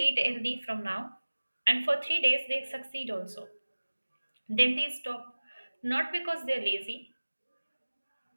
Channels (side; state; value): both; inverted; correlation -1.00